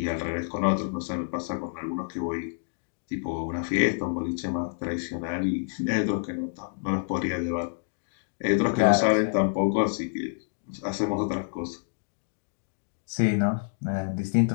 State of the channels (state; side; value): silent; right; digital silence